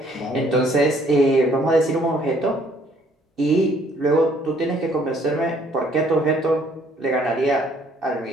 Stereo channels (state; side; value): normal; both; correlation 0.62